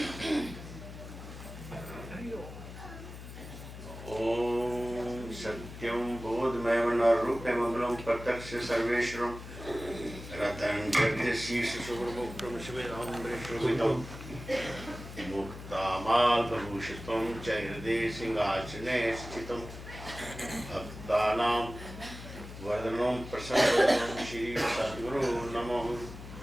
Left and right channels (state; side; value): noise; left; hum, 12 dB below the sound